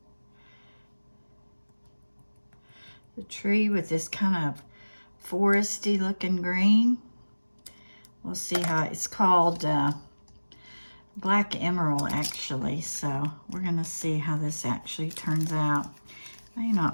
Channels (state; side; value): inverted; both; correlation -1.00